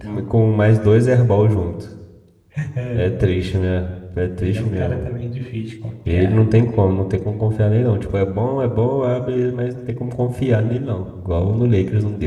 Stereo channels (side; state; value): both; identical; correlation 1.00